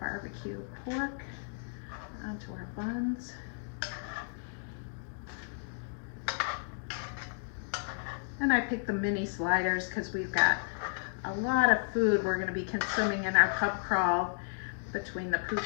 pork onto our buns. And I picked the mini sliders because we've got a lot of food we're going to be consuming in our pub crawl between the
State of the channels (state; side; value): silent; right; digital silence